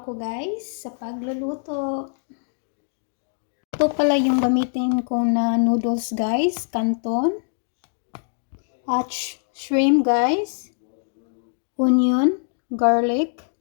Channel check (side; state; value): right; silent; digital silence